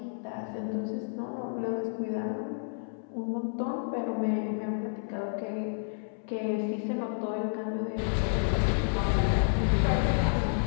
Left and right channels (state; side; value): silent; right; 58 dB below the other